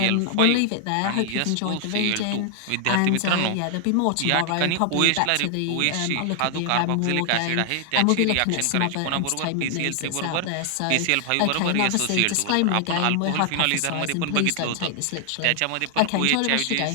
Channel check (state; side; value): different; both; correlation 0.00